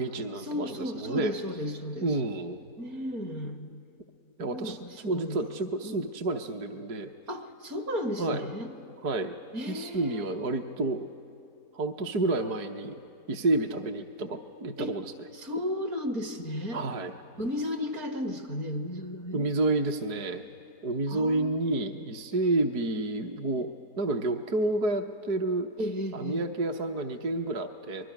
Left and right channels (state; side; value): late; left; 4.6 ms